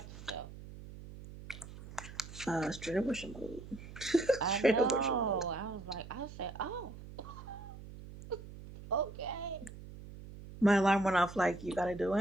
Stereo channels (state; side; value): noise; right; hum, 14 dB below the sound